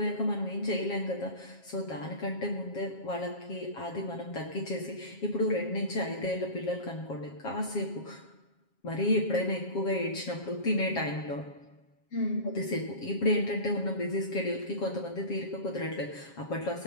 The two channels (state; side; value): late; right; 7.3 ms